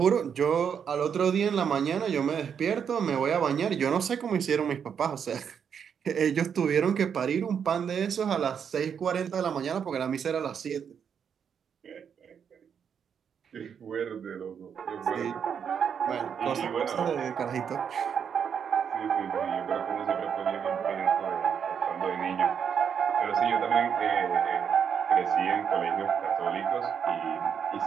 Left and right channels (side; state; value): left; quieter; 7.5 dB